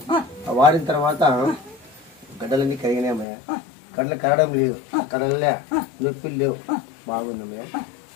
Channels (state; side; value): drops out; right; at 3.2 s